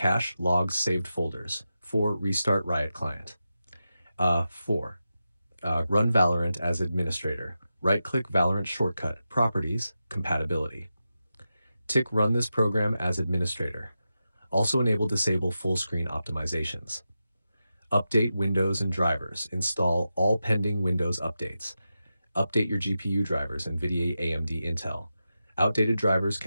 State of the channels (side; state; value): both; inverted; correlation -0.91